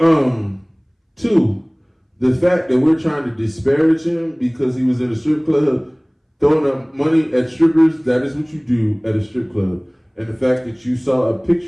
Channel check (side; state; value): both; identical; correlation 1.00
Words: 2, the fact that we're trying to disparage him because he was in a strip club throwing up money at strippers, that is what you do at a strip club. And the fact that you saw a